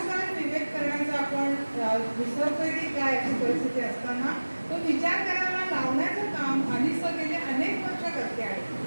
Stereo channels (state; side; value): inverted; both; correlation -1.00